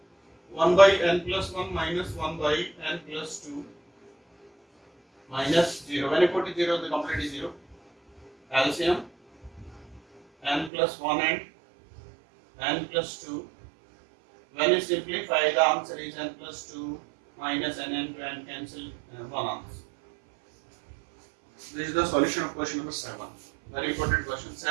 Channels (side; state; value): left; drops out; at 10.7 s